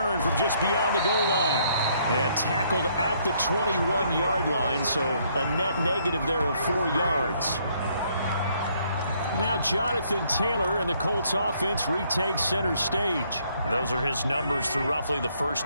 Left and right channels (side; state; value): both; inverted; correlation -0.68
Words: from just beyond the goal line. And tackled at the 21-yard line, so a net negative there of 4 yards. Now Jonathan Taylor and the Colts offense retakes center stage. Those are his numbers through roughly the